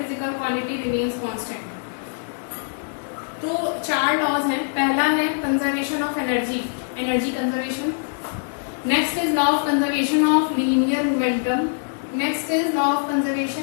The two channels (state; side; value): silent; right; 63 dB below the other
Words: quantity remains constant. तो 4 लॉज हैं। पहला है conservation of energy, energy conservation. Next is law of conservation of linear momentum. Next is law of